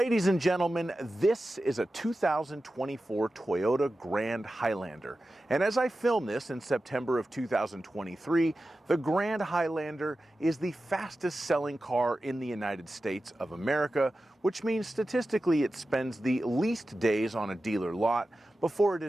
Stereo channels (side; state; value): both; normal; correlation 0.93